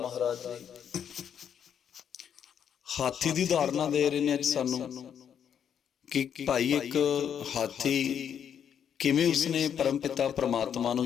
ਮਹਾਰਾਜ ਜੀ ਹਾਥੀ ਦੀ ਉਦਾਹਰਨਾਂ ਦੇ ਰਹੇ ਨੇ ਅੱਜ ਸਾਨੂੰ ਕਿ ਭਾਈ ਇੱਕ ਹਾਥੀ ਕਿਵੇਂ ਉਸਨੇ ਪਰਮ ਪਿਤਾ ਪ੍ਰਮਾਤਮਾ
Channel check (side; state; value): right; quieter; 8.5 dB